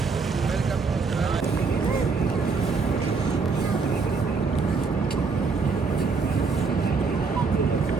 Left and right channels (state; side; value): quieter; left; 4.8 dB